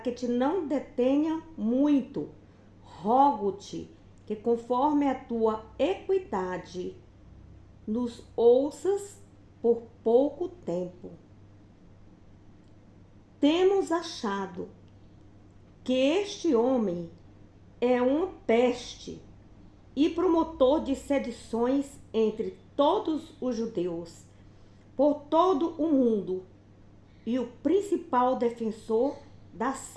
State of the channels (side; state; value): both; identical; correlation 1.00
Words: te não detenha muito, rogo-te que, conforme a tua equidade, nos ouças por pouco tempo. Temos achado que este homem é uma peste e promotor de sedições entre todos os judeus, por todo o mundo, e o principal defensor da